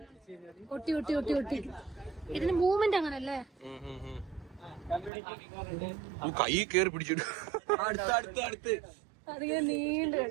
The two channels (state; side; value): drops out; left; at 5.1 s